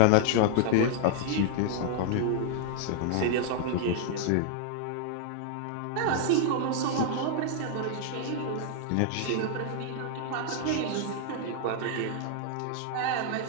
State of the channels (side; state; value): both; different; correlation 0.00